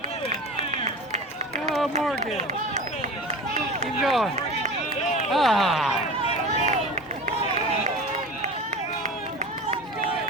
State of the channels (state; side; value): normal; both; correlation 0.32